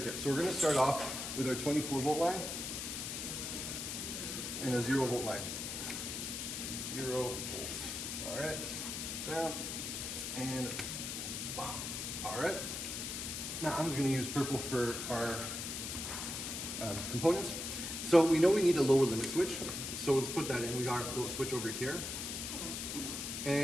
So we're going to start off with our 24-volt line and a 0-volt line. 0 volts. All right, down and bam. All right. Now I'm just going to use purple for our components. So we know we need a lower limit switch. So let's put that in. We got our float switch over here.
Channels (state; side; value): noise; left; hiss, 4 dB below the sound